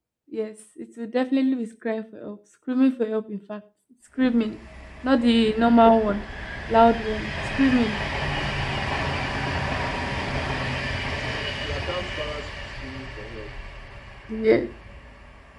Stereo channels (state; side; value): identical; both; correlation 1.00